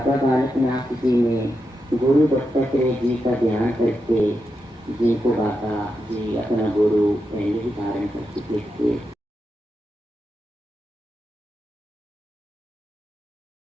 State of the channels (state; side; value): normal; both; correlation 0.87